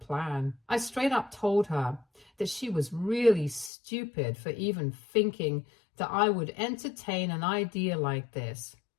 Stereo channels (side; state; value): right; drops out; at 3.7 s